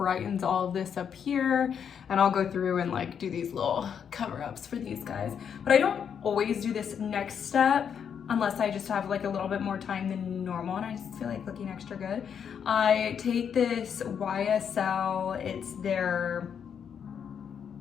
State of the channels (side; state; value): right; quieter; 7.7 dB